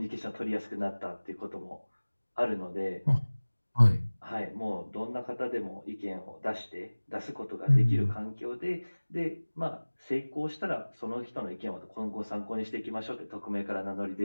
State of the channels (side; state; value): both; inverted; correlation -1.00